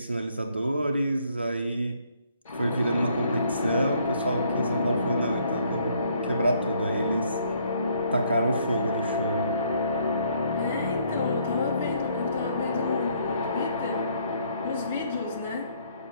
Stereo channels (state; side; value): inverted; both; correlation -0.66